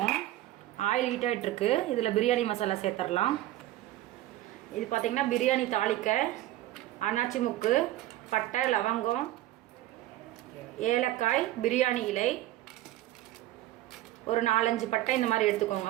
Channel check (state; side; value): quieter; left; 15.1 dB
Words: ஆயில் ஹீட் ஆகிட்டுருக்கு. இதில் பிரியாணி மசாலா சேர்த்துடலாம். இது பார்த்திங்கன்னா பிரியாணி தாளிக்க அன்னாச்சி முக்கு, பட்டை, லவங்கம், ஏலக்காய், பிரியாணி இலை, ஒரு 4-5 பட்டை இந்த மாதிரி